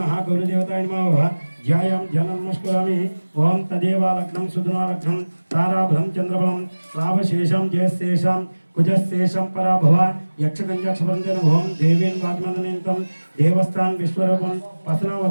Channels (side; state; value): both; inverted; correlation -1.00